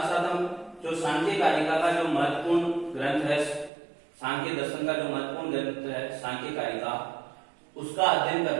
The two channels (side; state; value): left; drops out; at 3.7 s